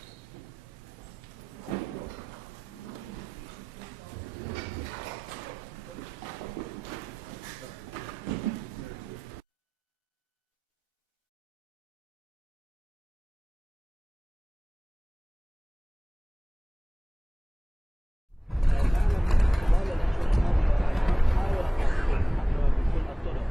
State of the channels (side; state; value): both; normal; correlation 0.96